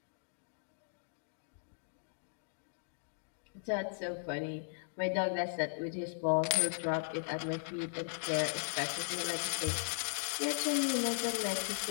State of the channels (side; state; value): right; silent; digital silence